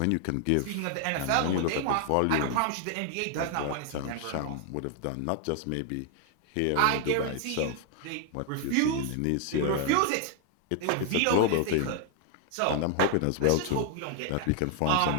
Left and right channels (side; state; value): both; different; correlation 0.00